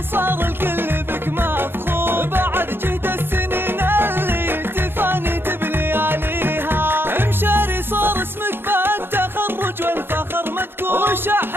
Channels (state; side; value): late; left; 0.10 ms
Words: الكل بك مفخور، بعد جهد السنين اللي تفاني بلياليها، امشاري صار اسمك بالتخرج والفخر مذكور،